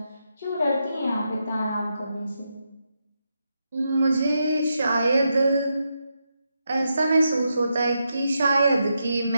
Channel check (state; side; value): inverted; both; correlation -0.84